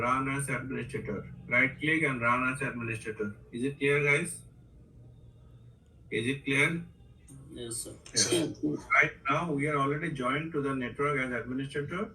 as administrator. Right click and run as administrator. Is it clear, guys? Is it clear? Yes, sir. Right now we are already joined to the network as administrator.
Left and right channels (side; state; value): both; identical; correlation 1.00